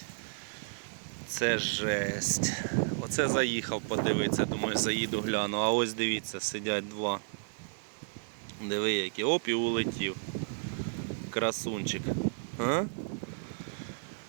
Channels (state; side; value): silent; left; 56 dB below the other